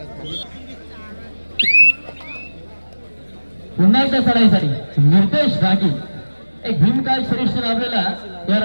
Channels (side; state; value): both; inverted; correlation -1.00